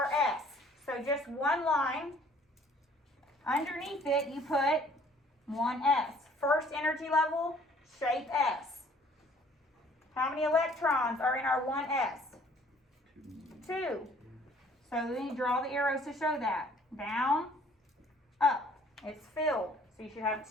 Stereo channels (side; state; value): both; normal; correlation 0.57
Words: S, so just one line. Underneath it you put one S. First energy level, shape S. How many electrons are in our 1s? 2. So then you draw the arrows to show that. Down, up. It's filled. So you should have